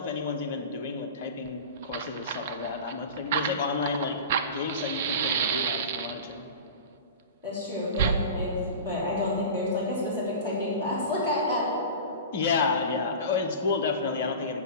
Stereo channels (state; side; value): inverted; both; correlation -0.32